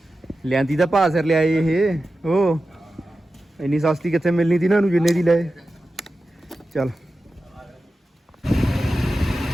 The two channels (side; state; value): both; normal; correlation 0.93